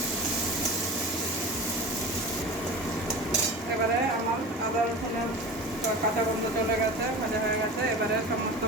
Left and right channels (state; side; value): normal; both; correlation 0.33